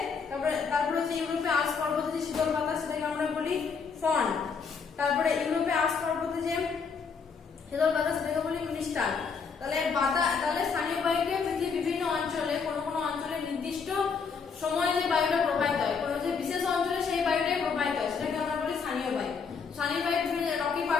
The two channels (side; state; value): right; quieter; 5.6 dB